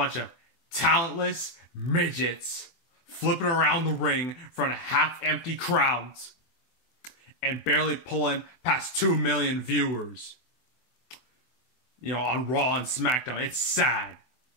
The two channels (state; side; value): late; right; 24 ms